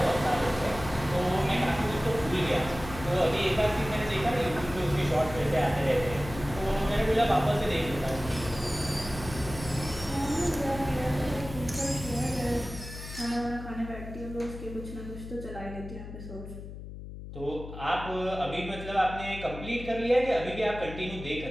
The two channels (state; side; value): noise; left; hum, 11 dB below the sound